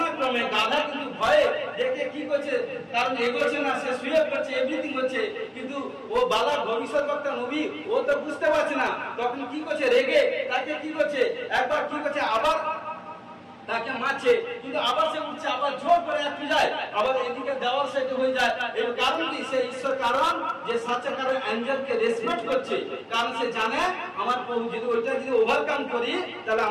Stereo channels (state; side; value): identical; both; correlation 1.00